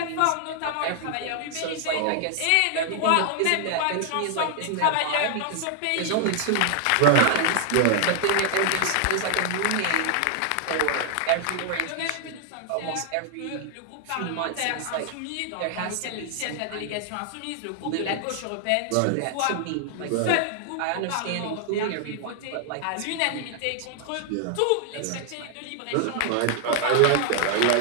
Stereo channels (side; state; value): both; different; correlation 0.00